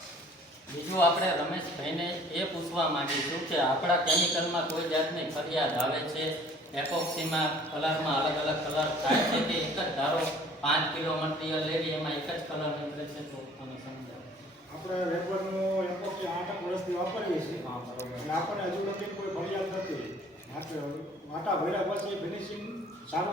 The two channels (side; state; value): both; normal; correlation 0.53